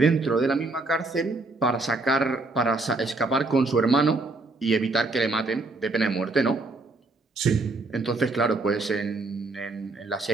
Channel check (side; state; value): left; quieter; 3.3 dB